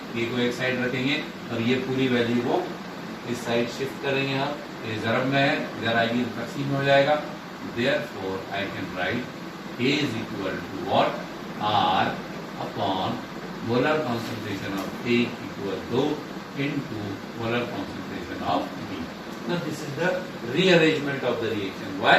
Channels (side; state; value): both; identical; correlation 1.00